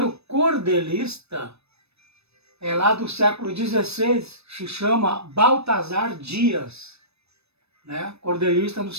cordelista é lá do século XVI, se chama Baltazar Dias, né? Cordelista no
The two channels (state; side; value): late; left; 0.79 ms